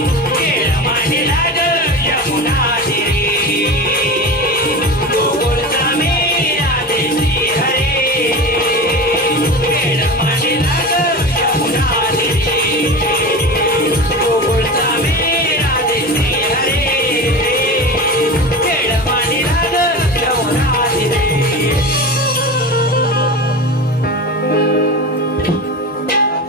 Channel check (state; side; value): normal; both; correlation 0.29